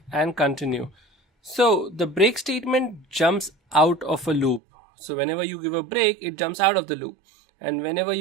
and continue. So the break statement jumps out of a loop. So whenever you give a break, it jumps out of the loop. And whenever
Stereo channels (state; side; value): drops out; left; at 4.6 s